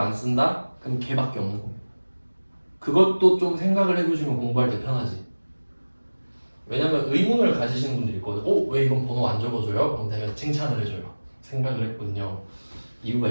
쓴다? 그럼 걔밖에 없는 겁니다. 그것도 좀 생각을 해두시면 공부할 때 편하지. 왜냐면 의문을 가지시는 분들이 있거든. 왜 이건 번호 안 적어줘요? 그럼 내가 칭찬을 해줘요. 생각을 했군요. 이유가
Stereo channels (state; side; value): inverted; both; correlation -1.00